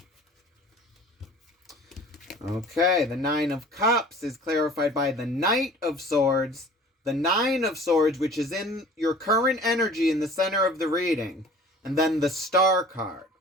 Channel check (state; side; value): normal; both; correlation 0.46